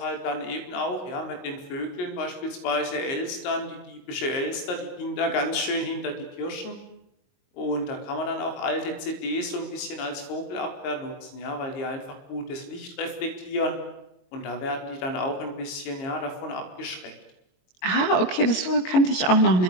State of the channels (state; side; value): late; right; 22 ms